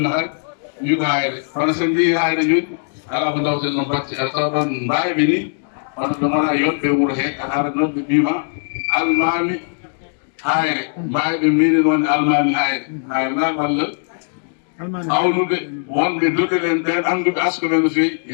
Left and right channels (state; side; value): silent; right; digital silence